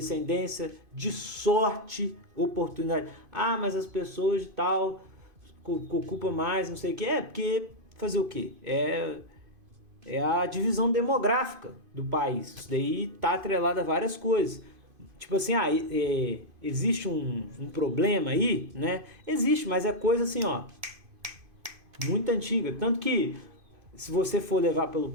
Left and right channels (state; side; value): late; left; 2.5 ms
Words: de sorte, oportunidade. Mas as pessoas de tal ocupam mais, não sei o quê. Porque fazer o quê? É a divisão demográfica do país. Isso daí tá atrelado a várias coisas. Tipo assim, existe um problema aí, né? Existe, mas é coisa assim, ó, muito antiga. Tanto que, se você for levar